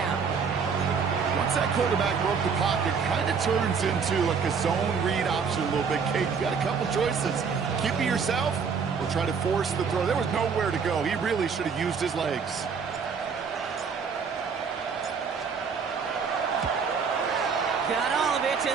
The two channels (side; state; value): left; quieter; 5.9 dB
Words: Once that quarterback broke the pocket, kind of turns into like a zone read option a little bit. Kate, you got a couple choices. Keep it yourself or try to force the throw. There was nowhere to go. He really should have used his legs. Got all of it,